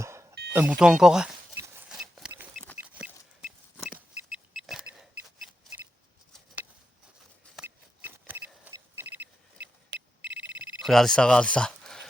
bouton encore. Regardez ça, regardez ça.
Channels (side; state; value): both; normal; correlation 0.87